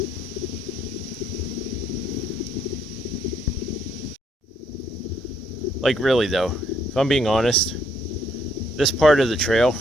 Like, really though, if I'm being honest, this part of the trail,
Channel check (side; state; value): both; normal; correlation 0.71